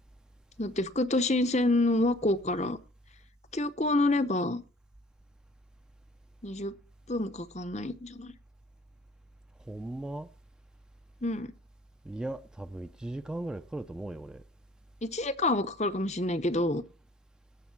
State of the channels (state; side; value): normal; both; correlation 0.55